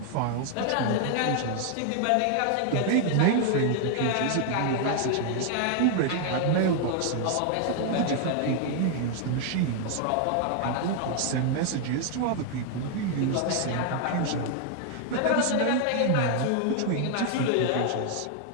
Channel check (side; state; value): both; different; correlation 0.00